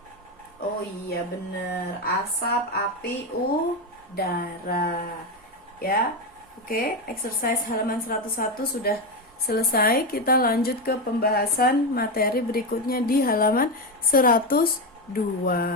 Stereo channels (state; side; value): normal; both; correlation 0.12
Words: Oh iya bener, asap, api, udara. Ya. Oke, exercise halaman 101 sudah selesai. Kita lanjut ke pembahasan materi berikutnya di halaman 102.